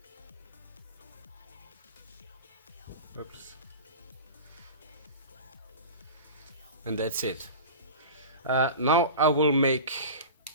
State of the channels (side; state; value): both; inverted; correlation -0.32